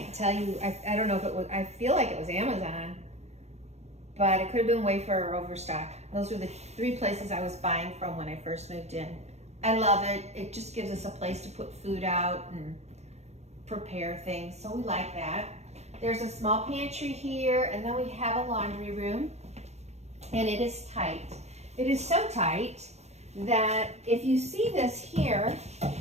tell you, I don't know if it was, I feel like it was Amazon, but it could have been Wayfair or Overstock. Those were the 3 places I was buying from when I first moved in. I love it. It just gives us a place to put food out and prepare things, so we like that. There's a small pantry here, and then we have a laundry room, and it is tight. It is so tight that if you see this here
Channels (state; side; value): late; left; 0.32 ms